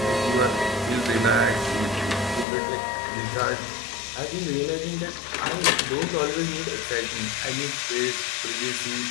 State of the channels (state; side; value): drops out; right; at 2.5 s